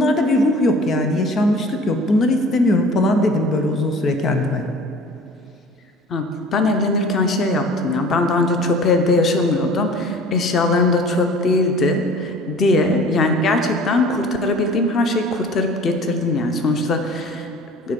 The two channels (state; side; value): normal; both; correlation 0.45